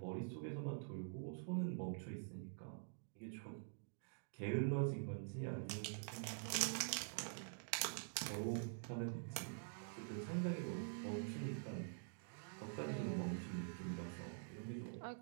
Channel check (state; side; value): silent; left; digital silence